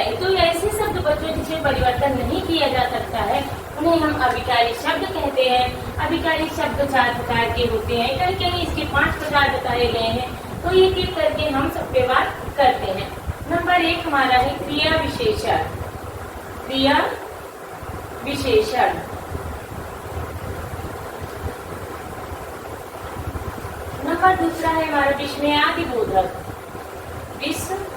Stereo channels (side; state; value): both; identical; correlation 1.00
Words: तो ऐसे शब्द बच्चों जिसमें परिवर्तन नहीं किया जा सकता है उन्हें हम अभिकारी शब्द कहते हैं। अभिकारी शब्द 4 प्रकार के होते हैं। कहीं कहीं इसके 5 प्रकार बताए गए हैं। तो एक एक करके हम सब पे बात करते हैं। नंबर 1 हमारा है क्रिया विशेषण। क्रिया विशेषण नंबर 2 है हमारा विस्मयादि बोधक। विस्मयादि